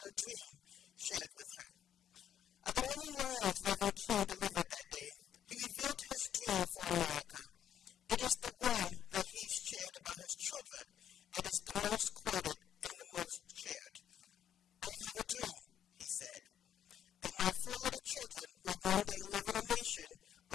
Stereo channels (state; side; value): quieter; right; 9.9 dB